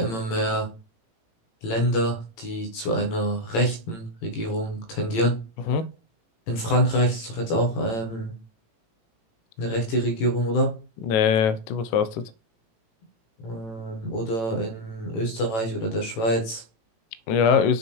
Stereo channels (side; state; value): right; late; 18 ms